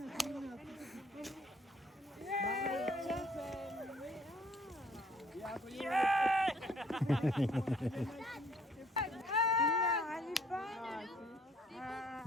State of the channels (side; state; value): both; normal; correlation 0.61